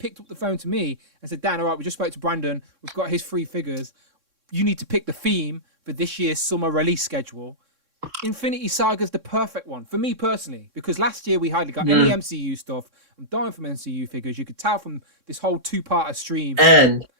up the phone to me and said, Dan, all right, we just spoke to Brandon. We've got his 3 figures. You need to pick the theme for this year's summer release schedule. Infinity Saga's the perfect one for me personally, because last year we hardly got any MCU stuff. I'm dying from MCU figures. You could tell from this whole 2-parter stream. And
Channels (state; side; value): late; left; 3.6 ms